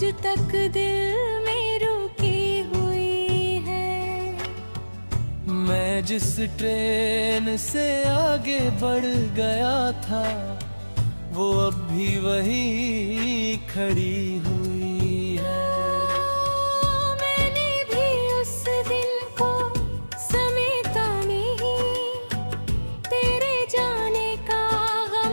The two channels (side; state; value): both; inverted; correlation -1.00